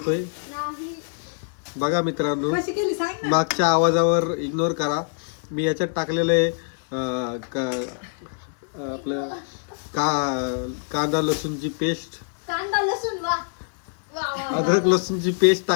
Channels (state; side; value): silent; right; digital silence